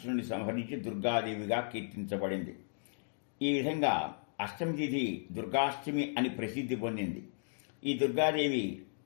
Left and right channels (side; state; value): right; silent; digital silence